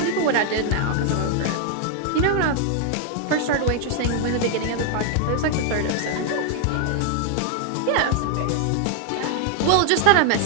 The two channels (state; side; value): different; both; correlation 0.00